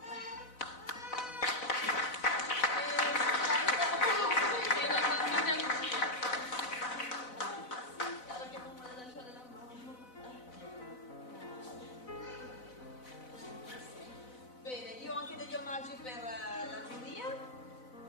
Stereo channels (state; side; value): late; right; 4.0 ms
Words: Bene, io ho anche degli omaggi per la giuria.